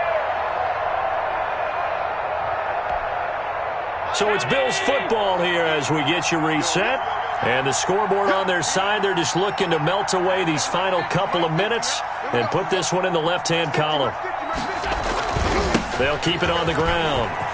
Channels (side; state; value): both; identical; correlation 1.00